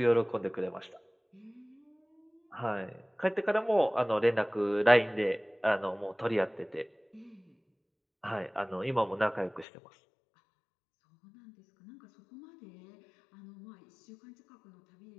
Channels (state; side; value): drops out; right; at 9.7 s